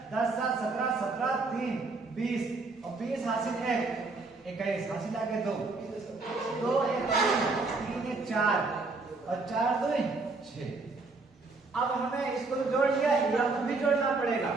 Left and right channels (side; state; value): left; quieter; 3.7 dB